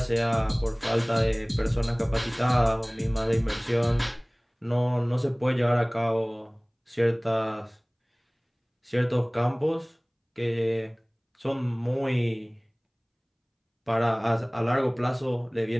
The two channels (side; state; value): both; identical; correlation 1.00